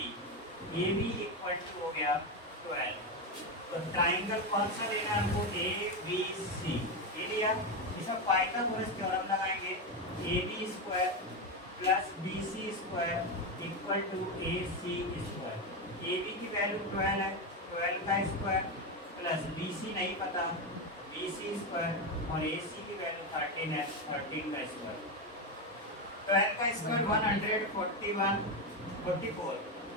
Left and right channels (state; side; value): normal; both; correlation 0.11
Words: बी इक्वल टू हो गया 12। तो ट्राइंगल कौन सा लेना है हमको, ए बी सी, ये लिया। इसमें पाइथागोरस थ्योरम लगाएंगे, A B square plus B C square equal to A C square. A B की वैल्यू 12 है, 12 का स्क्वायर प्लस बी सी नहीं पता, बी सी स्क्वायर, और ए सी की वैल्यू 13 है, 13 का स्क्वायर। 12 का स्क्वायर 144,